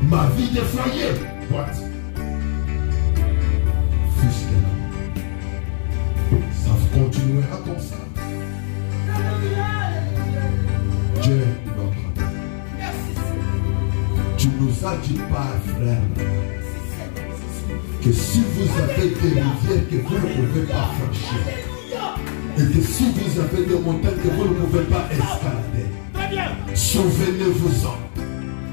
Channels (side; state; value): right; silent; digital silence